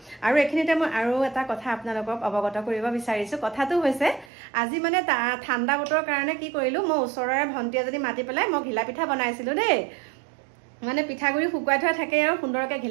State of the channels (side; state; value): left; drops out; at 4.3 s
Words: আৰু এখিনিতে মই আৰু এটা কথা আপোনালোকক অৱগত কৰিব বিচাৰিছো কথাটো হৈছে আজি মানে ঠাণ্ডা বতৰৰ কাৰণে কি কৰিলো মই ওচৰৰে ভণ্টি এজনী মাতি পেলাই মই ঘিলা পিঠা বনাইছিলো দেই মানে পিঠাগুৰি শুকুৱাই থোৱা থাকে আৰু সুন্দৰকৈ